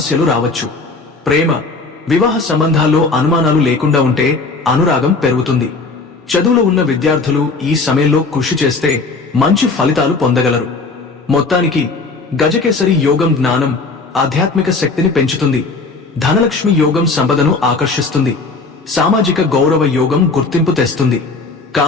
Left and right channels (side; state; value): right; quieter; 3.9 dB